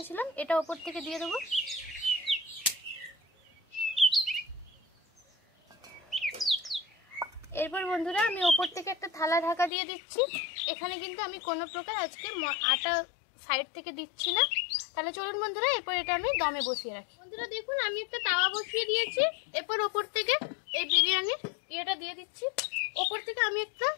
এটা ওপর থেকে দিয়ে দেবো। এরপর বন্ধুরা আমি ওপর থেকে একটা থালা ঢাকা দিয়ে দিচ্ছি। এখানে কিন্তু আমি কোনো প্রকার আজকে আটা সাইড থেকে দিচ্ছি না। তাহলে চলুন বন্ধুরা এরপর এটা আমি দমে বসিয়ে রাখি। বন্ধুরা দেখুন আমি একটা তাওয়া বসিয়ে দিয়েছি। এরপর ওপর থেকে এই বিরিয়ানির ইয়েটা দিয়ে দিচ্ছি। ওপর থেকে আমি একটা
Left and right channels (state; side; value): drops out; right; at 9.7 s